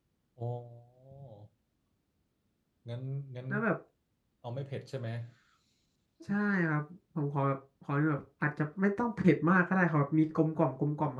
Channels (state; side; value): identical; both; correlation 1.00